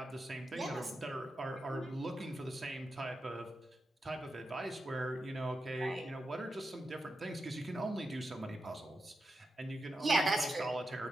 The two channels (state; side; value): normal; both; correlation 0.88